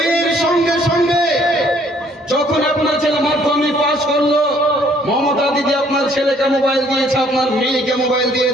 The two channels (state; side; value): normal; both; correlation 0.62